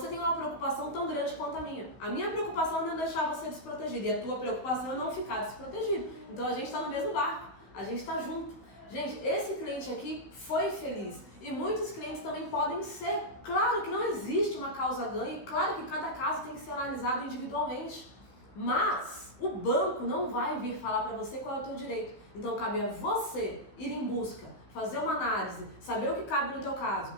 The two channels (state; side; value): late; right; 15 ms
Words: tem uma preocupação tão grande quanto a minha. A minha preocupação é não deixar você desprotegido, e a tua preocupação é não ficar desprotegido. Então a gente está no mesmo barco, a gente está junto. Gente, esse cliente aqui foi feliz e muitos clientes também podem ser. Claro que não existe uma causa ganha e claro que cada caso tem que ser analisado individualmente, mas o banco não vai vir falar para você qual é o teu direito. Então cabe a você ir em busca, fazer uma análise, saber o que cabe no teu caso